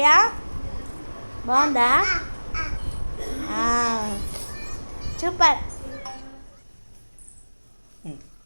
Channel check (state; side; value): inverted; both; correlation -1.00